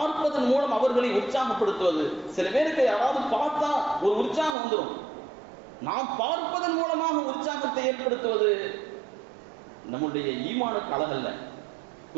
மூலம் அவர்களை உற்சாகப்படுத்துவது. சில பேருக்கு யாராவது பார்த்தா ஒரு உற்சாகம் வந்துடும். நாம் பார்ப்பதன் மூலமாக உற்சாகத்தை ஏற்படுத்துவது நம்முடைய ஈமானுக்கு அழகல்ல.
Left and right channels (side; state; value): left; drops out; at 4.5 s